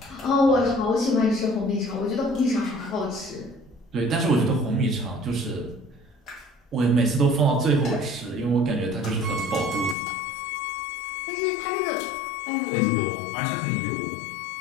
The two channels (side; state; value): right; drops out; at 10.0 s